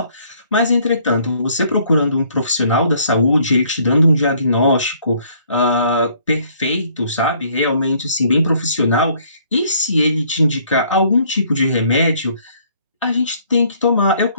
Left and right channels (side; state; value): both; inverted; correlation -0.62